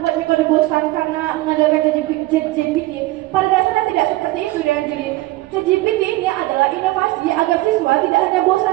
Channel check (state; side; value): quieter; left; 18.6 dB